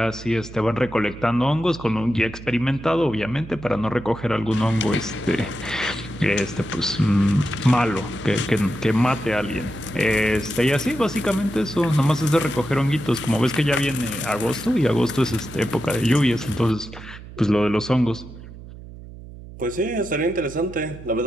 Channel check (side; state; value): right; noise; hum, 15 dB below the sound